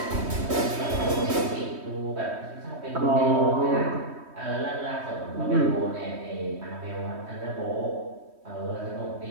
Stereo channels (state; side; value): late; left; 3.2 ms